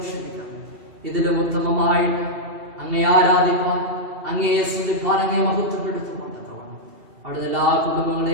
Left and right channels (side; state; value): left; late; 2.7 ms